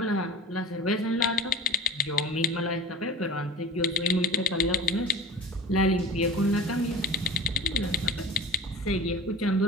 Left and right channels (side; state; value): both; normal; correlation 0.33